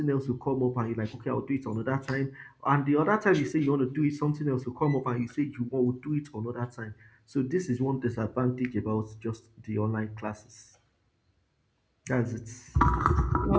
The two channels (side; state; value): both; identical; correlation 1.00